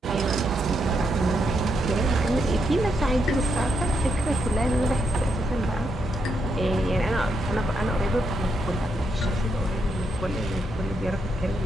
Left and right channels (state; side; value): normal; both; correlation 0.80